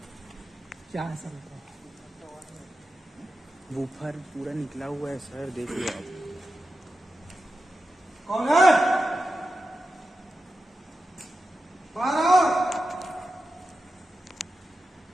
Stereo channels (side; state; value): both; normal; correlation 0.91